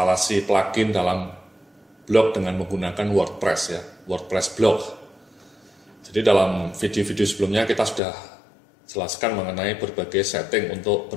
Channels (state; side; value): drops out; right; at 8.0 s